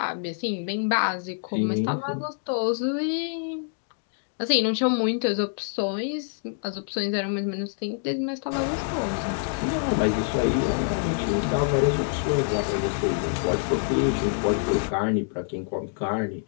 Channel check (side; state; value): right; silent; digital silence